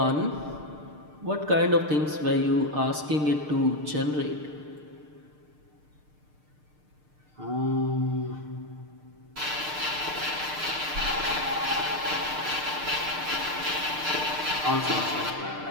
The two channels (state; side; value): late; left; 6.6 ms